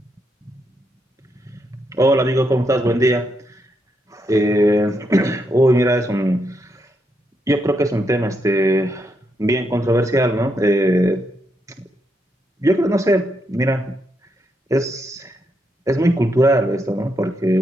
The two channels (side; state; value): both; normal; correlation 0.80